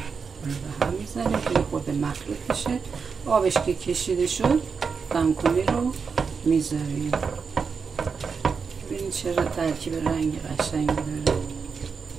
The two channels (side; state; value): left; quieter; 5.5 dB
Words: به هم میزنیم که خود مخلوط بشه. آبش که کشیده شد دمکنی رو میذاریم. ببینید چرا ترکیب رنگ قشنگی داره.